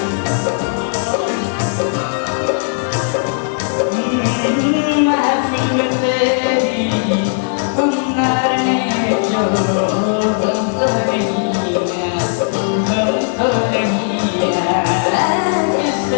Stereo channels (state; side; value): silent; right; digital silence